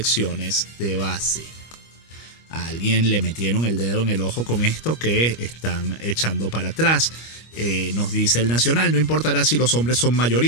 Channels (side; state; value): right; late; 25 ms